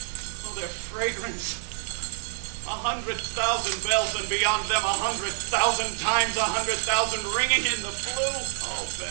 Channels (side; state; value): left; silent; digital silence